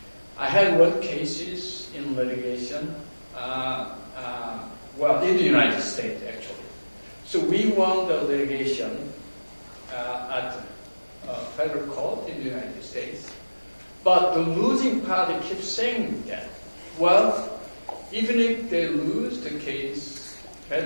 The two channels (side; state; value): both; inverted; correlation -1.00